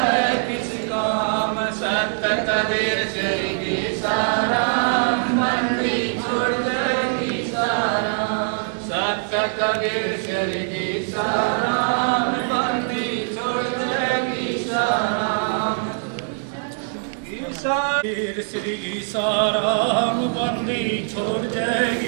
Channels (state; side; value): silent; left; digital silence